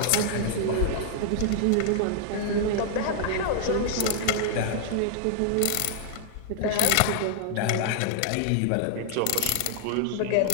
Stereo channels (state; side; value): different; both; correlation -0.01